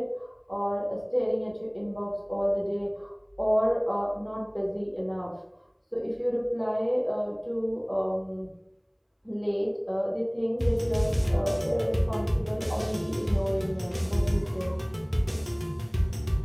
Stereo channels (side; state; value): both; identical; correlation 1.00